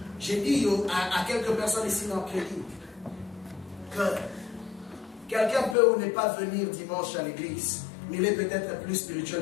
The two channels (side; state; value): right; drops out; at 5.8 s